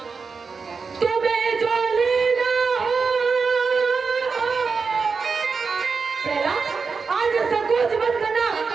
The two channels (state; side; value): quieter; left; 5.0 dB